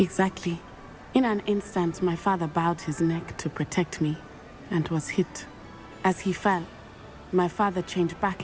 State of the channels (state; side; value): identical; both; correlation 1.00